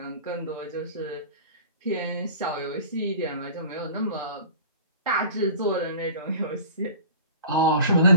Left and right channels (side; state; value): both; inverted; correlation -0.41